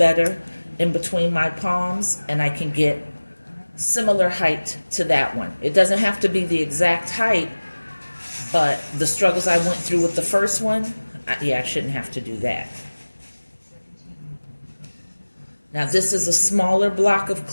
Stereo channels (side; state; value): both; inverted; correlation -1.00